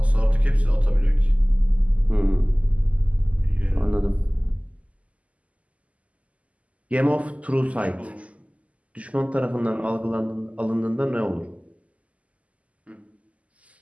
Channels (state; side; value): late; left; 0.067 ms